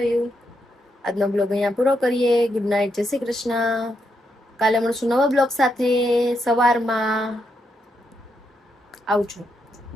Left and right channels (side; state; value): both; normal; correlation 0.81